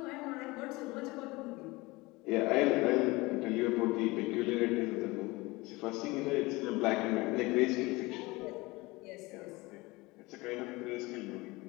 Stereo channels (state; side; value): quieter; right; 22.5 dB